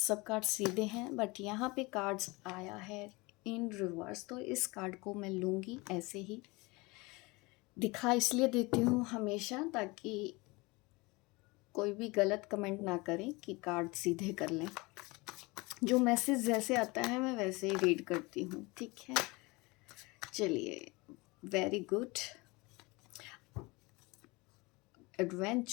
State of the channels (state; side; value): quieter; right; 24.6 dB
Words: कार्ड सीधे हैं, बट यहाँ पे कार्ड्स आया है इन रिवर्स, तो इस कार्ड को मैं लूँगी ऐसे ही। दिखा इसलिए देती हूँ हमेशा ताकि कोई भी गलत कमेंट ना करें कि कार्ड सीधे कर लें। जो मैसेज जैसे आता है मैं वैसे ही रीड करती हूँ, ठीक है। चलिए, वेरी गुड।